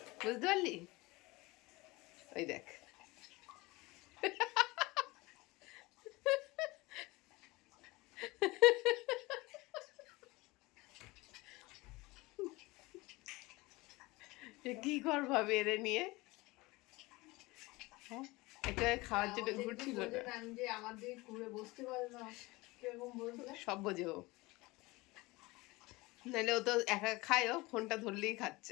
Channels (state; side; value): quieter; right; 22.2 dB